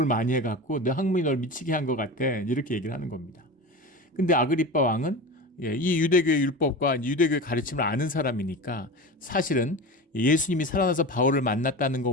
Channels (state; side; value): normal; both; correlation 0.28